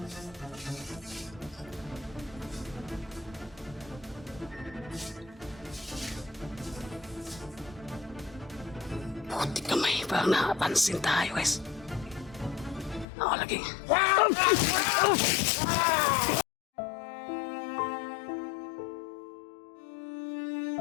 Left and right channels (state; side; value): drops out; right; at 13.1 s